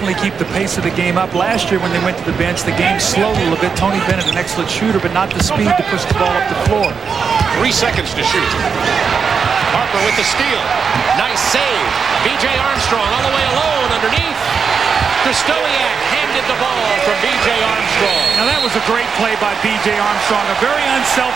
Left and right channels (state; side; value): quieter; left; 5.9 dB